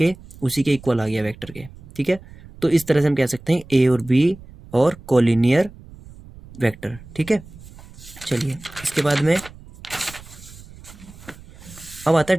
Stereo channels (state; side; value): noise; right; rumble, 19 dB below the sound